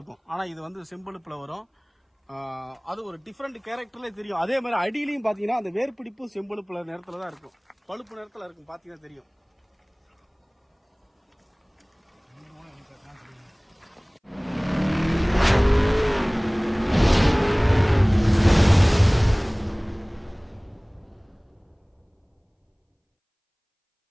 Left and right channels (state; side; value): identical; both; correlation 1.00